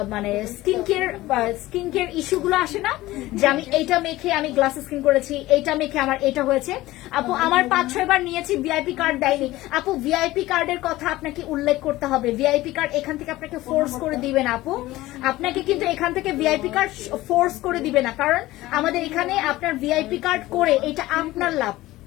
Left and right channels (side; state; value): right; quieter; 17.5 dB